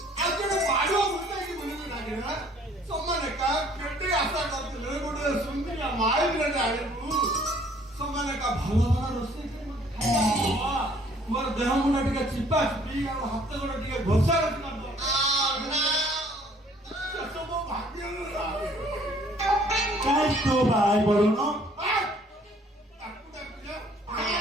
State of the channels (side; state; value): both; normal; correlation 0.58